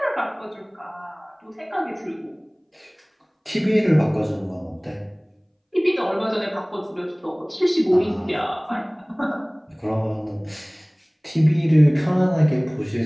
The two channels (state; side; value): identical; both; correlation 1.00